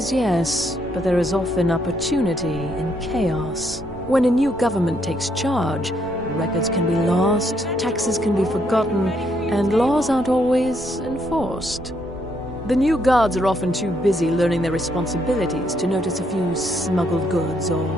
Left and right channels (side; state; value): both; normal; correlation 0.74